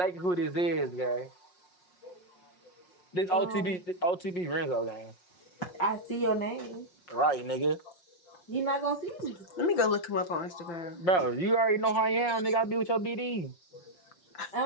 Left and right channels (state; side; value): late; right; 5.6 ms